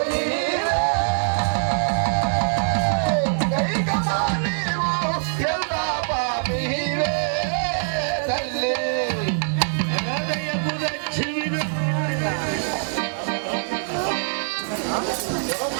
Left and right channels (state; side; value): silent; left; 63 dB below the other